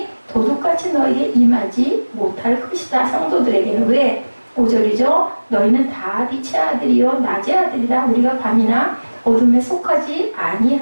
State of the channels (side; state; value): both; inverted; correlation -1.00